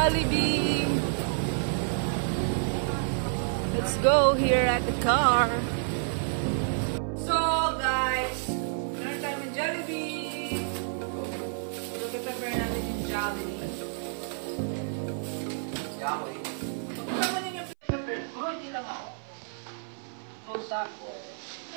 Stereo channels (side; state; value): left; silent; 57 dB below the other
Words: Let's go here at the car. So guys, meron tayo ng Jollibee. So prepare natin yung Jollibee. Jollibee. Kasama niyo yung prepare ko, hindi lang ako. Close up.